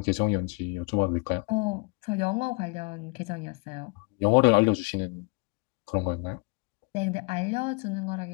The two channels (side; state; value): right; quieter; 31.3 dB